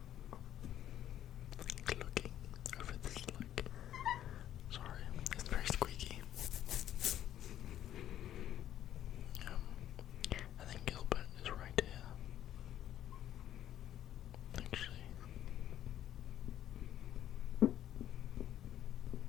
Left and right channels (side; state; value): right; quieter; 11.6 dB